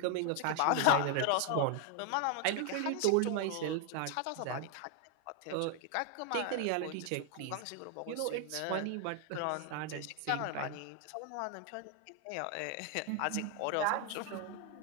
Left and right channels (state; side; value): different; both; correlation 0.00